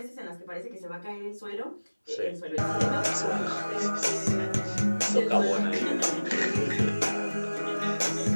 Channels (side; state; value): both; inverted; correlation -1.00